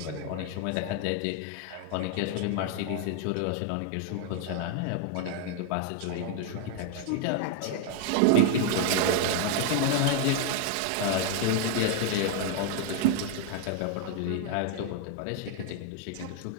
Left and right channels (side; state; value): both; different; correlation 0.00